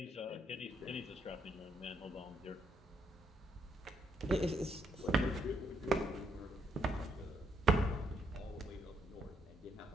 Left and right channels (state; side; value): normal; both; correlation 0.75